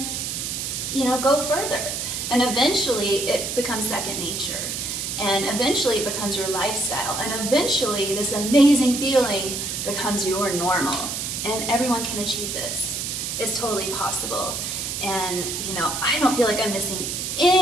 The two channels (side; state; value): right; noise; hiss, 3 dB below the sound